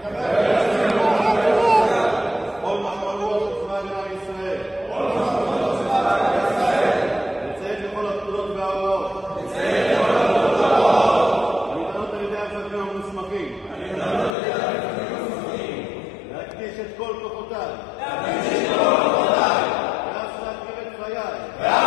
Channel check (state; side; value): drops out; right; at 14.4 s